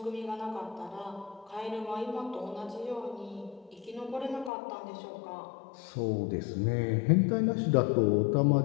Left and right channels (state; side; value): drops out; right; at 4.5 s